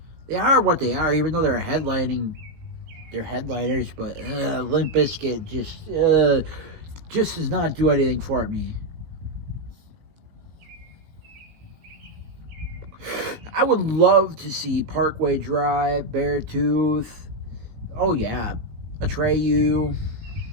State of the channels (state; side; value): late; left; 18 ms